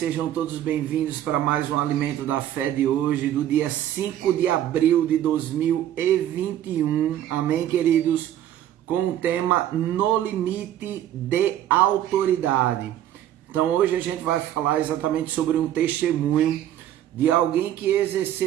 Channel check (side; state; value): left; quieter; 11.7 dB